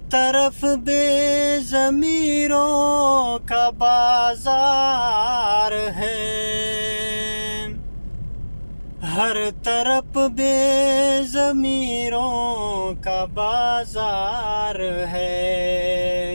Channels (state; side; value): inverted; both; correlation -1.00